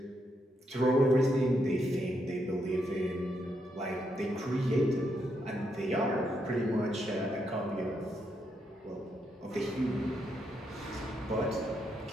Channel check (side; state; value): both; normal; correlation 0.79